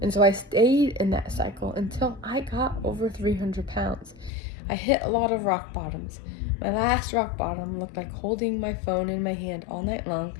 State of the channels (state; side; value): drops out; right; at 4.3 s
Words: And so I stayed in that cycle until I got over 300 pounds. I hit a lot of rock bottoms. My last rock bottom looked like holding my phone in my hand all night long,